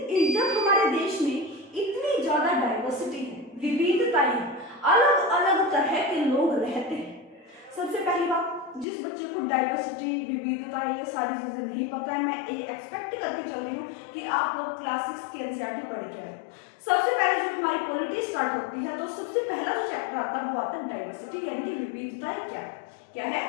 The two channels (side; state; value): right; drops out; at 8.8 s